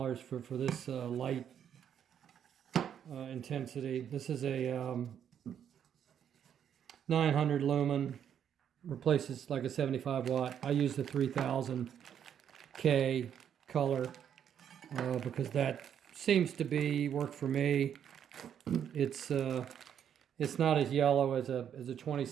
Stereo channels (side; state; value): left; quieter; 8.9 dB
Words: for this light intensity. This is a 900 lumen, replaces like a 75 watt. I use the 3000K color because that seems to work for me. It's not as yellow as a